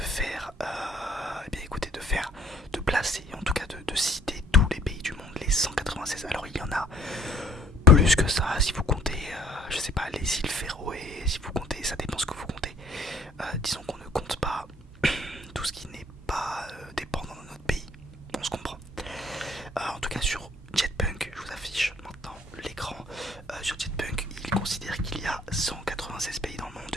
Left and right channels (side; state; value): both; normal; correlation 0.59